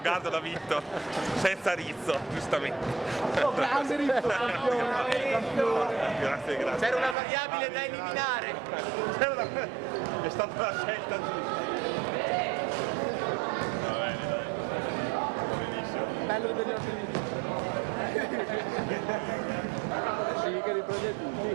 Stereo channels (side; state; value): left; drops out; at 7.2 s